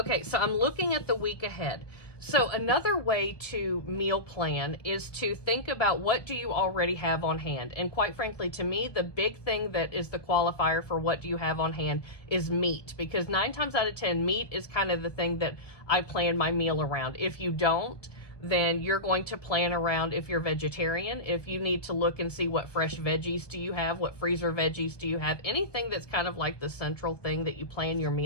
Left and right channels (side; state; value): right; late; 1.1 ms